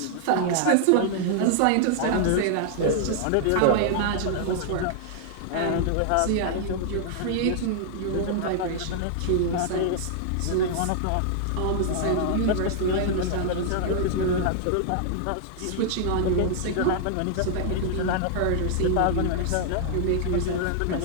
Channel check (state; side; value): different; both; correlation -0.01